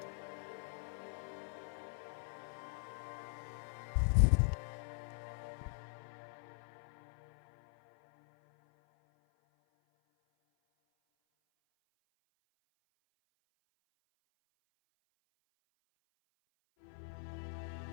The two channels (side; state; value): right; silent; 50 dB below the other